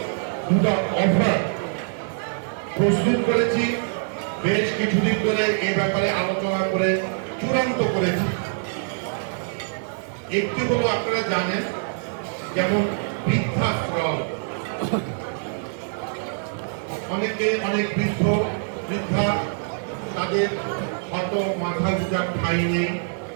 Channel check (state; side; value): silent; left; 62 dB below the other